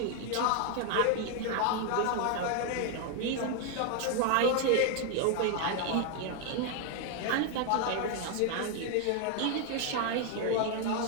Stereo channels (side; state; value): both; different; correlation 0.01